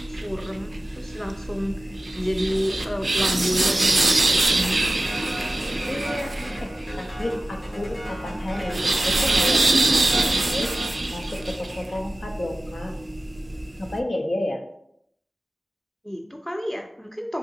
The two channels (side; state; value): both; normal; correlation 0.96